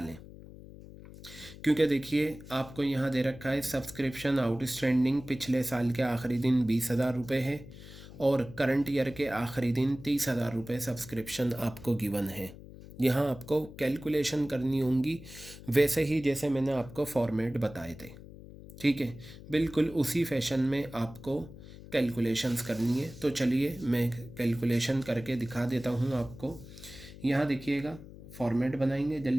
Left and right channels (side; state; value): left; noise; hum, 16 dB below the sound